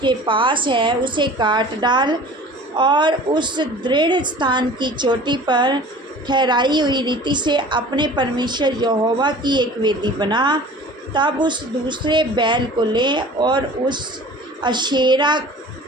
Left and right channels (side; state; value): both; normal; correlation 0.43